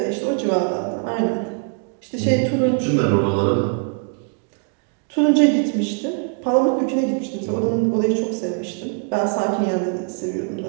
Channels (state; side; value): quieter; left; 37.3 dB